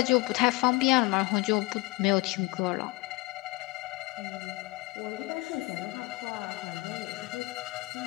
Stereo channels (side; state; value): right; quieter; 23.4 dB